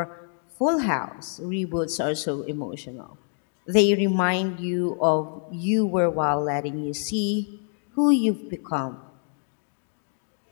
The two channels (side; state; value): right; silent; 61 dB below the other